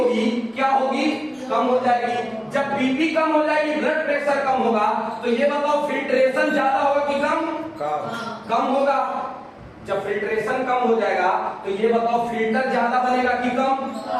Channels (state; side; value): identical; both; correlation 1.00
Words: क्या होगी? कम हो जाएगी। जब बीपी कम हो जाएगी, ब्लड प्रेशर कम होगा, तो ये बताओ फिल्ट्रेशन ज्यादा होगा कि कम? होगा। जब फिल्ट्रेशन कम हो जाएगा तो ये बताओ फिल्टर ज्यादा बनेगा कि कम?